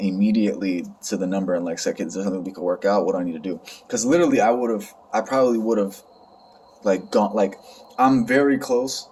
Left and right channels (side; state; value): both; identical; correlation 1.00